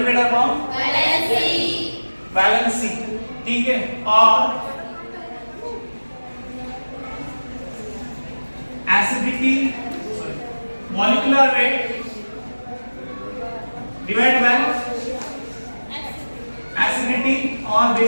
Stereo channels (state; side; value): inverted; both; correlation -1.00